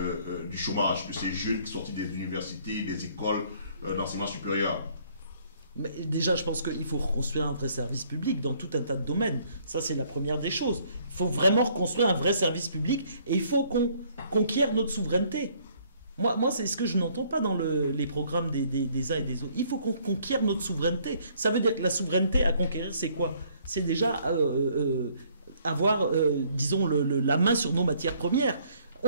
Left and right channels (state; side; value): inverted; both; correlation -0.63